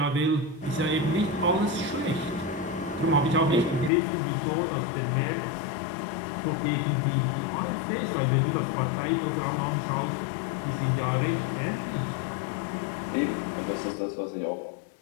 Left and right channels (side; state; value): right; drops out; at 3.9 s